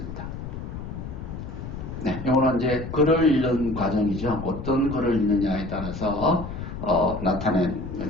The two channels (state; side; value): noise; left; rumble, 8 dB below the sound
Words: 네, 이거는 이제 글을 읽는 과정이죠. 어떤 글을 읽느냐에 따라서 나타낸